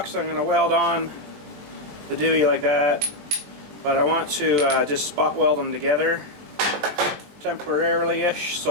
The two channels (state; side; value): late; left; 20 ms